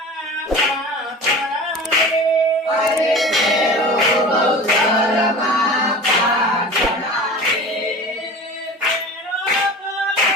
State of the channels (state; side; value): normal; both; correlation 0.37